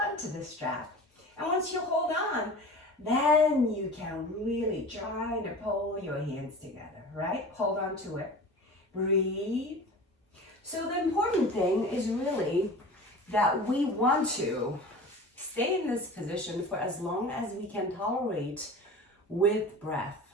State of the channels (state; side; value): normal; both; correlation 0.36